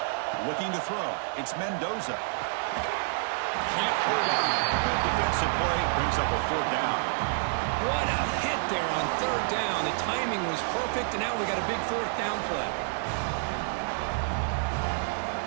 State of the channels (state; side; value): silent; left; digital silence